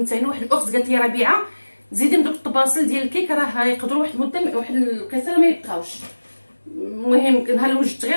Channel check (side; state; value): both; inverted; correlation -1.00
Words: ثاني. واحد الاخت قالت لي ربيعه زيدي من دوك الطباصل ديال الكيك راه يقدروا واحد المده واحد القيصره ما يبقاوش، المهم نهار اللي وجدت غير